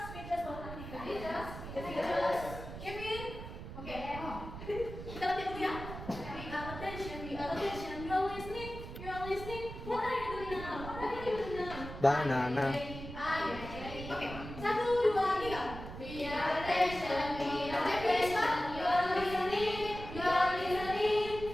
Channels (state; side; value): noise; right; rumble, 10 dB below the sound